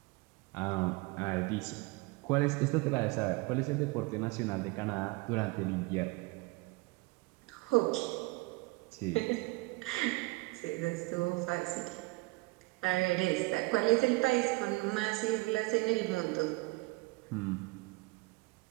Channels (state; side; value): quieter; left; 24.2 dB